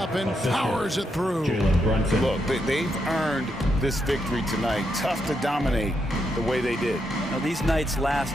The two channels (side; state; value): both; normal; correlation 0.81